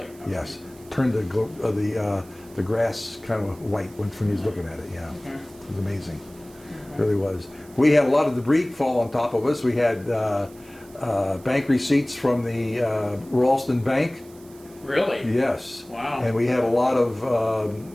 Yes. Turned the grass kind of white when he was looking at it, yeah. It was amazing. It really was. We had a lot of debris fall on top of us. We had bank receipts from the Ralston Bank. Really? Yes. Wow. And we had a lot of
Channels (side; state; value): right; noise; hiss, 25 dB below the sound